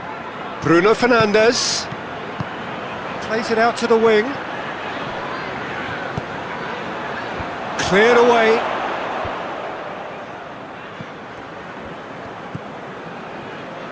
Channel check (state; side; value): identical; both; correlation 1.00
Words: Bruno Fernandes. Plays it out to the wing. Cleared away.